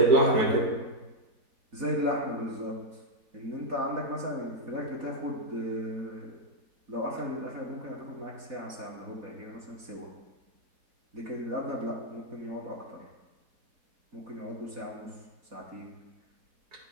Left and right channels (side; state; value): left; late; 4.1 ms